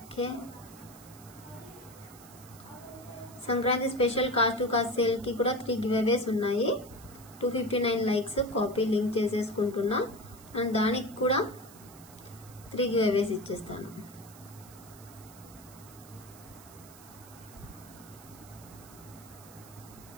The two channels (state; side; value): noise; right; hiss, 20 dB below the sound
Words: Sankranti special cost to cost sale కి కూడా 3 గివ్ అవేస్ ఉన్నాయి. 259 లైక్స్ కాపీ లింక్ చేసేసుకుంటున్నా అండ్ దానికి కూడా 3 గివ్ అవేస్ ఇచ్చేస్తాను.